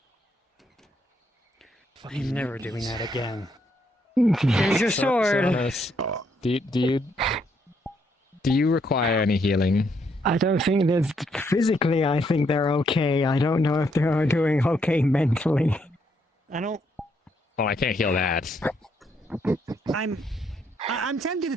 I'm never doing that again. Here's your sword. Sonos, do you require any healing? I don't think there's physically. I think they're okay. I don't know if they're doing okay mentally. I don't. Oh, I can't heal that. I'm tempted to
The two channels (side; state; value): both; normal; correlation 0.74